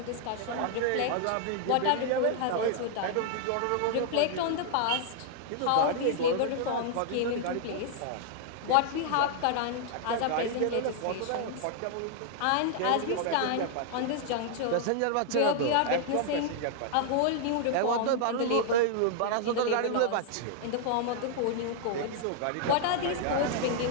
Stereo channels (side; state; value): both; different; correlation -0.01